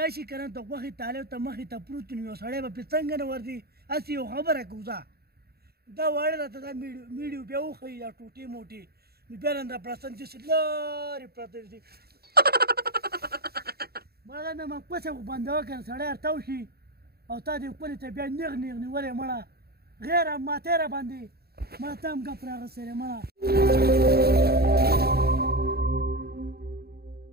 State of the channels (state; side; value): late; left; 0.46 ms